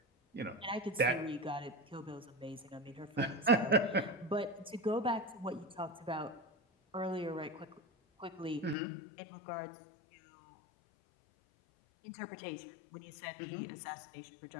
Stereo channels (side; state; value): right; drops out; at 8.8 s